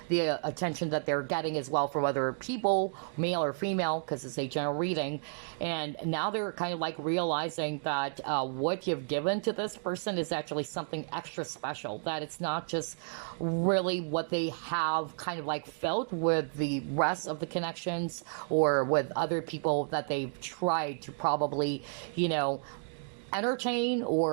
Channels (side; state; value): left; silent; digital silence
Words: attention that they're getting as well from other people, male or female, because it's a general reading. And now they're kind of like realizing that what you've given to this person is actually something extra special, that it's not just really what they have kind of like felt with the rest of the connections or with other people that they've tried to probably, entertain